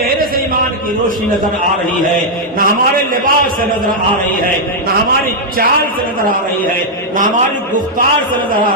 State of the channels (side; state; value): both; normal; correlation -0.04